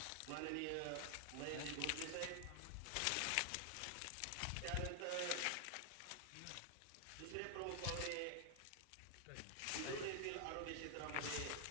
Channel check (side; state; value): both; different; correlation 0.00